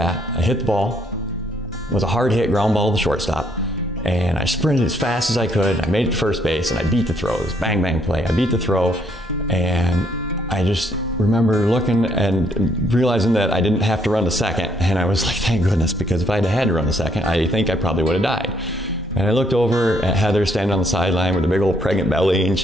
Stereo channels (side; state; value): both; normal; correlation 0.70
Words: I hit the ball, it was a hard hit ground ball to the shortstop, and I sprinted as fast as I could. I made it to first base and I beat the throw. It was bang, bang play. I beat the throw, and I just remember looking and realizing that I didn't have to run to second, and I was like, thank goodness, because if I had to run to second, I think I probably would have died. And I looked over at Heather standing on the sideline with a big old pregnant belly, and